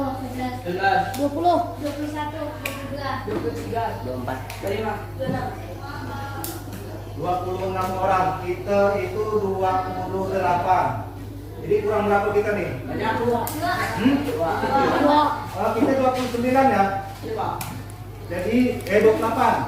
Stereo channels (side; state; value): both; identical; correlation 1.00